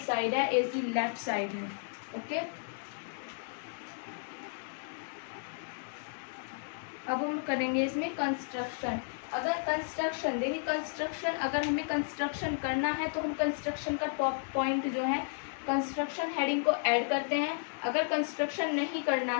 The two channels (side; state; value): right; silent; digital silence